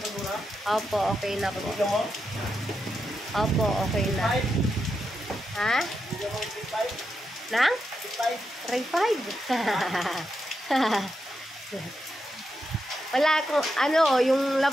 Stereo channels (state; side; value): normal; both; correlation 0.85